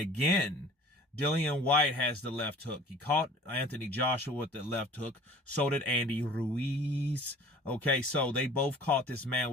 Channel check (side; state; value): both; normal; correlation 0.46